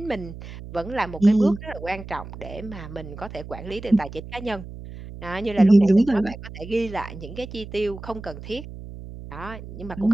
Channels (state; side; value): noise; right; hum, 13 dB below the sound